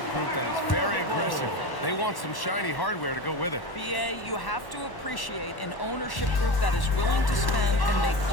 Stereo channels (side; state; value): right; late; 1.1 ms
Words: group that is very aggressive. They want some shiny hardware to go with it. BA, you have to appreciate an ownership group that is willing to spend and make